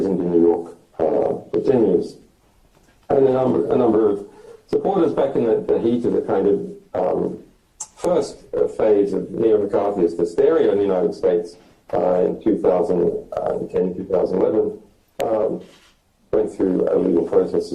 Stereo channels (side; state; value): both; identical; correlation 1.00